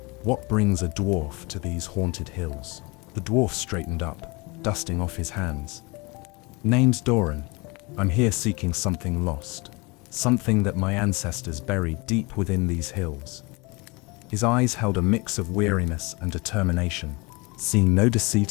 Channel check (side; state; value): right; quieter; 26.8 dB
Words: What brings a dwarf to these haunted hills?" The dwarf straightened up, dusting off his hands. "Name's Doran. I'm here seeking something lost, something that my ancestors buried deep within these hills." His eyes held a mix of weariness and determination. Seeing no